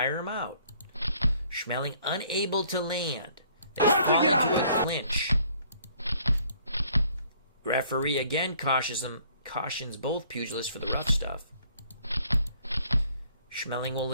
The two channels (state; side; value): inverted; both; correlation -0.61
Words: him out. Schmeling unable to land. They fall into a clinch. Referee again cautions both pugilists for the rough stuff. Schmeling will